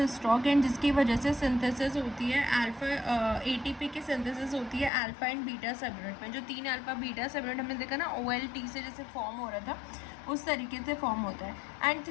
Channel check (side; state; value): right; drops out; at 4.9 s